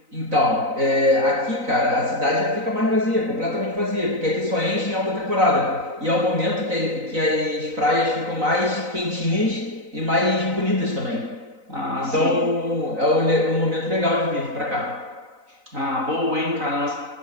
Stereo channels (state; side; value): late; left; 3.9 ms